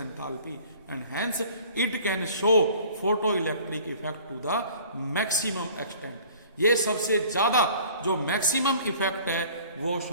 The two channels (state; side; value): inverted; both; correlation -0.49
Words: and hence it can show photo electric effect to the maximum extent. ये सबसे ज्यादा जो मैक्सिमम इफेक्ट है वो